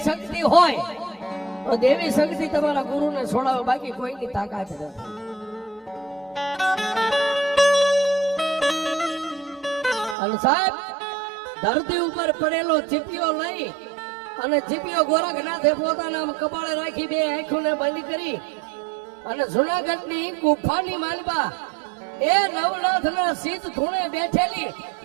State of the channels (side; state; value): left; drops out; at 10.2 s